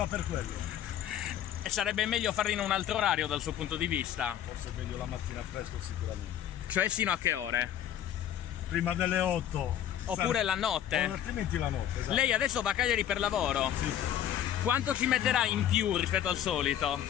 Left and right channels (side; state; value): right; quieter; 10.7 dB